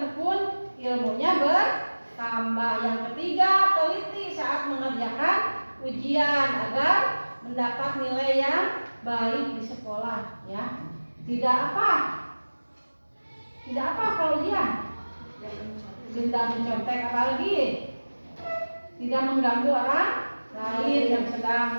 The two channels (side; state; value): both; inverted; correlation -1.00